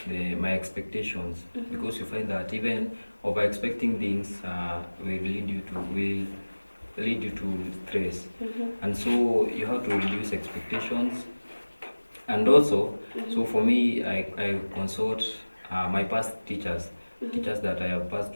my expectations, because you find that even over expecting things will lead you to stress, and so you have to reduce expectations. And also, so for me, I consult my past teachers that I have passed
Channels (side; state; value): both; inverted; correlation -1.00